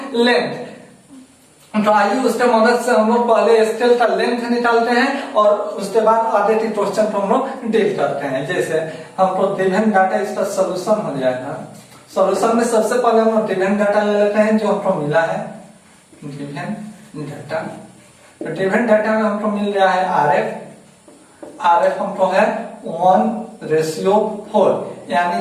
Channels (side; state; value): both; identical; correlation 1.00